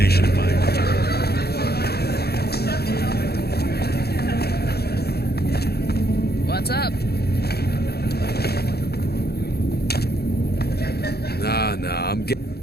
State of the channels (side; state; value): right; late; 0.46 ms